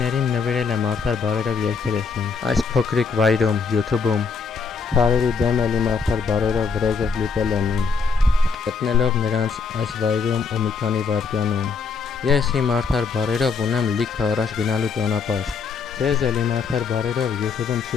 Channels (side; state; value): right; quieter; 5.2 dB